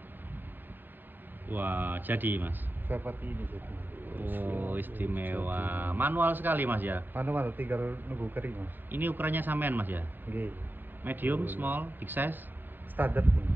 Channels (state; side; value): late; left; 0.092 ms